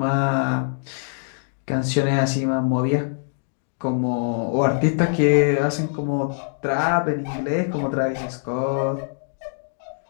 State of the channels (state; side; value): silent; right; digital silence